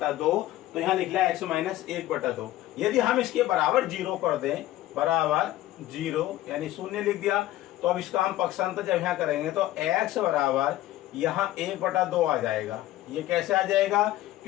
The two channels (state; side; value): quieter; right; 15.0 dB